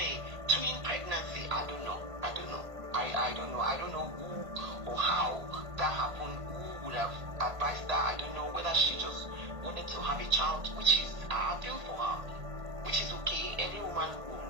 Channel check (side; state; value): left; late; 1.5 ms